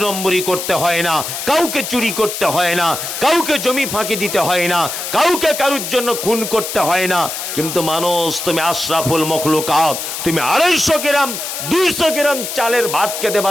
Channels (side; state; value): left; noise; hiss, 6 dB below the sound